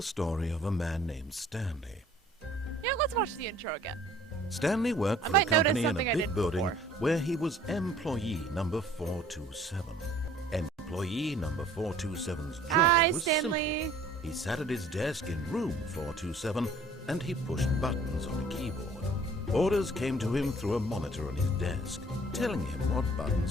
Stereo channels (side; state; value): both; normal; correlation 0.54